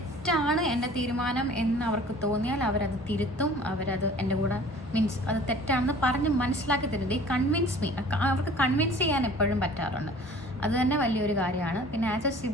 എൻ്റെ തീരുമാനം എന്ന് അവർക്ക് തോന്നിയാൽ അവരത് തിരുത്തും, അവരത് എൻ്റെ കൂടെ മീൻസ് അത് തെറ്റാണെന്ന് പറഞ്ഞ് മനസ്സിലാക്കി തരും. ദേ കൺവിൻസ് മീ. അവർക്ക് കൺവിൻസ് ചെയ്യാൻ എപ്പോഴും പറ്റാറുണ്ട്, അത് തന്നെ വലിയൊരു കാര്യമാണ്. പിന്നെ ആസ് എ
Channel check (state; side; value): normal; both; correlation 0.48